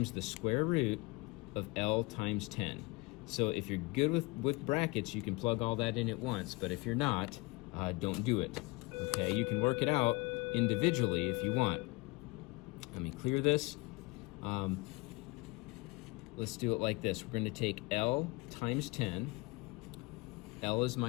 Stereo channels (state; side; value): quieter; right; 24.5 dB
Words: the square root of L times 10. So if you're good with brackets, you can plug all that in at once, but if you're not, don't do it. Okay, you can work it out individually if you want. Let me clear this. Let's do it like this. We're going to take L times 10. L is